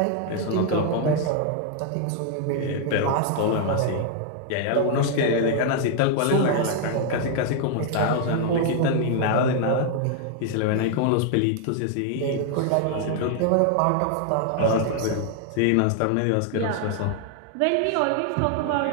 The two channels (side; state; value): both; different; correlation 0.00